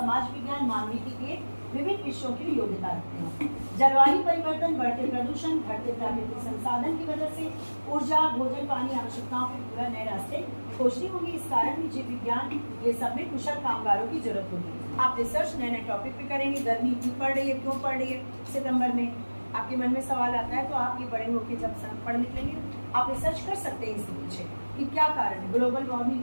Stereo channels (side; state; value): both; inverted; correlation -1.00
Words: विज्ञान, मानविकी के विभिन्न विषयों की योग्यता रखते हैं। जलवायु परिवर्तन, बढ़ते प्रदूषण, घटते प्राकृतिक संसाधन की वजह से ऊर्जा, भोजन, पानी आवश्यकताओं के पूरा नए रास्ते खोजने होंगे। इस कारण भी जीव विज्ञान ये सब में कुशल कामगारों की जरूरत होगी। आप रिसर्च नए नए टॉपिक पे करेंगे। गर्मी क्यों पड़ रही है, क्यों पड़ रही है, सितंबर में आपके मन में सवाल आता है, तो आप ये बड़े होकर जब पढ़ निकलेंगे आप रिसर्च कर सकते हैं इसके पीछे कि क्या कारण है, ग्लोबल वार्मिंग